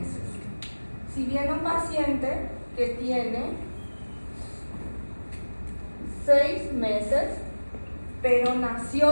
Si viene un paciente que tiene 6 meses, pero nació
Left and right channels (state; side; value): inverted; both; correlation -1.00